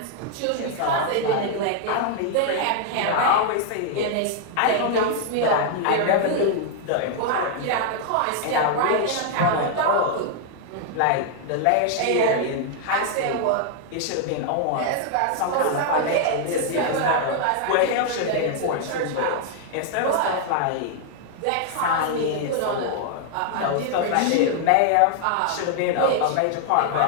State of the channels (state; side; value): different; both; correlation 0.00